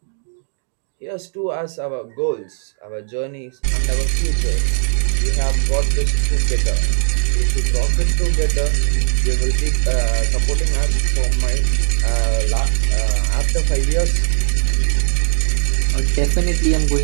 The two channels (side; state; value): left; silent; 67 dB below the other